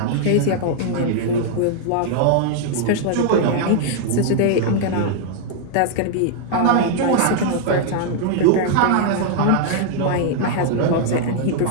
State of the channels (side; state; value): both; different; correlation -0.01